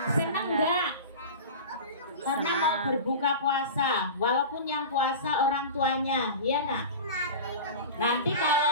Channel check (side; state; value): both; inverted; correlation -0.31